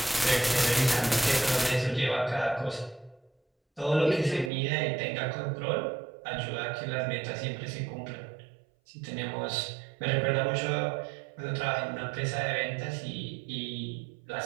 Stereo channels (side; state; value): left; drops out; at 4.5 s